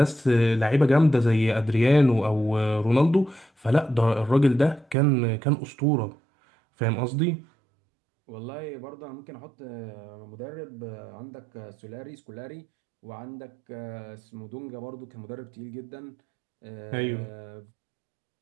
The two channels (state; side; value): drops out; left; at 5.0 s